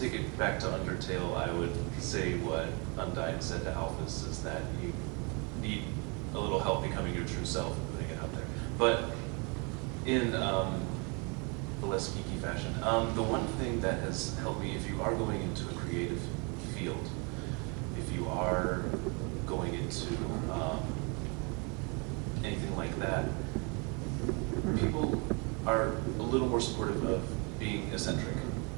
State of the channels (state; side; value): quieter; left; 32.5 dB